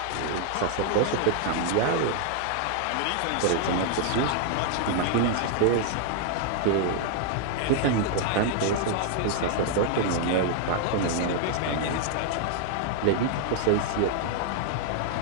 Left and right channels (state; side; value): different; both; correlation 0.00